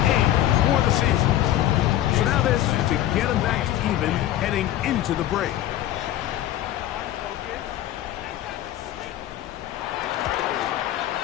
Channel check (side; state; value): right; quieter; 13.1 dB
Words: 8 for the season. So now this to get him back to even heading into the break.